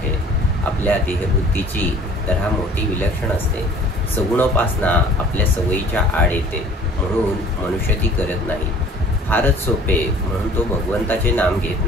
आपल्या देहबुद्धीची तऱ्हा मोठी विलक्षण असते. सगुणोपासना आपल्या सवयीच्या आड येते, म्हणून मनुष्य ती करत नाही. फारच सोपे म्हणून तो भगवंताचे नाम घेत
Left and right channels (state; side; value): normal; both; correlation 0.50